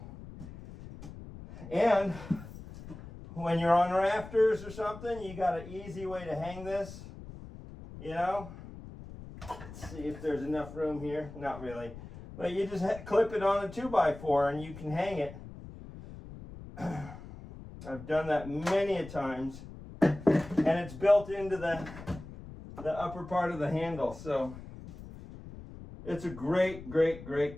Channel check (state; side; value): noise; left; rumble, 14 dB below the sound